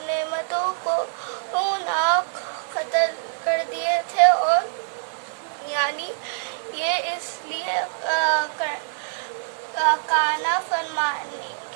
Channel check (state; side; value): silent; left; digital silence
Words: نعمتوں کو ناک قتل کر دیے تھے، اور یعنی یہ اس لیے کانا فرمانی